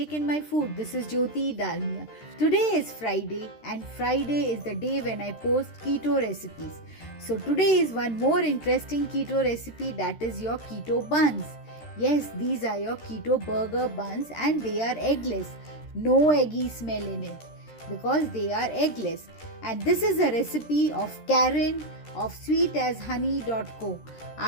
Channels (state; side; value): late; right; 13 ms